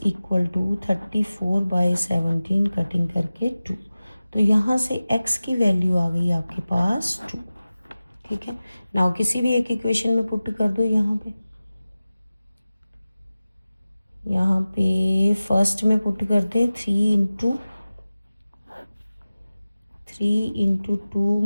equal to 34/17 cutting करके 2। तो यहाँ से x की वैल्यू आ गई आपके पास 2। ठीक है, नाउ किसी भी एक इक्वेशन में पुट कर दो। यहाँ पे फर्स्ट में पुट करते 3 × 2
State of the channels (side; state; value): both; inverted; correlation -0.96